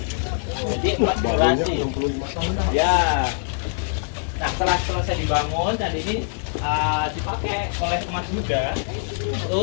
Jadi 4 generasi. Ya. Nah, setelah selesai dibangun, candi ini dipakai oleh umat Buddha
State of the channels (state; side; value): silent; right; digital silence